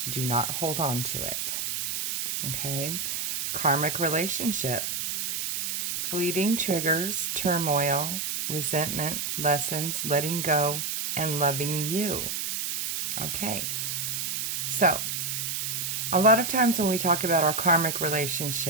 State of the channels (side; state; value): right; noise; hiss, 2 dB below the sound